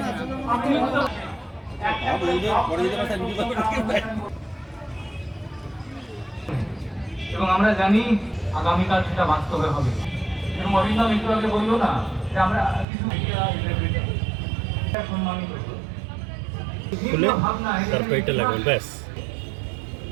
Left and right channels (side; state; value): left; drops out; at 12.9 s